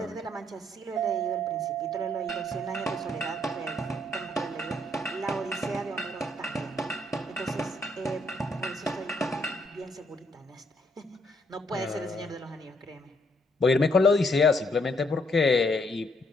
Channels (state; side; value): normal; both; correlation 0.71